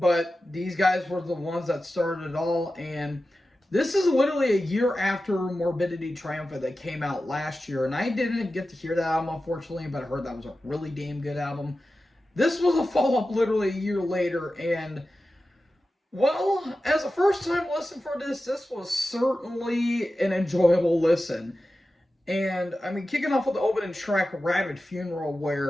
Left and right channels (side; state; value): both; normal; correlation 0.93